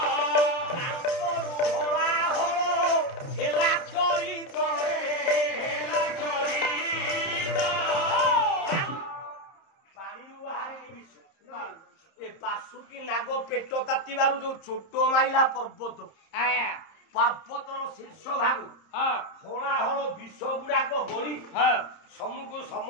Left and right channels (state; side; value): late; right; 30 ms